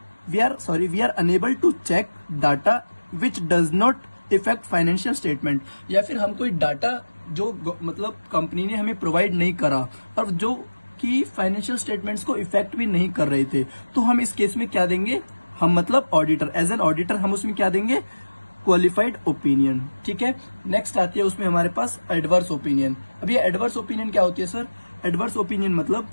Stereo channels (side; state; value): both; inverted; correlation -1.00